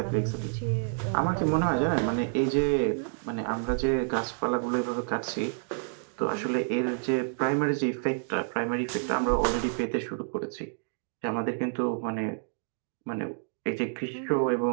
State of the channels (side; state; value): left; silent; digital silence